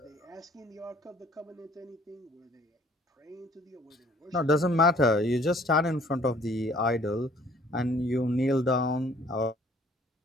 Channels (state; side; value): normal; both; correlation 0.58